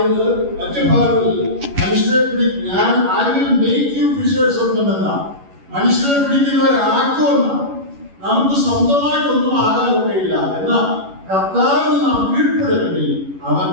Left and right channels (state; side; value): late; left; 11 ms